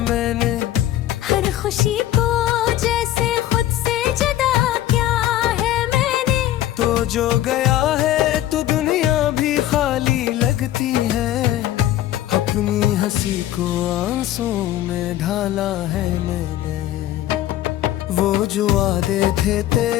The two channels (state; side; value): quieter; right; 13.4 dB